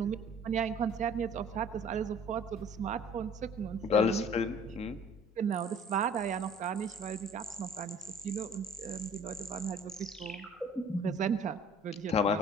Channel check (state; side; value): normal; both; correlation 0.51